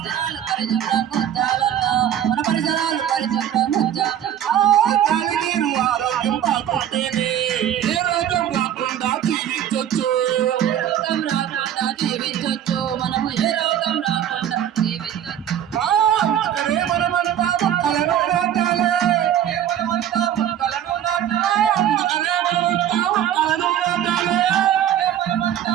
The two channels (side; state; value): left; quieter; 10.5 dB